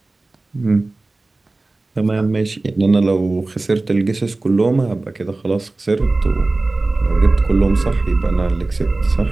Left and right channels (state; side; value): quieter; left; 3.2 dB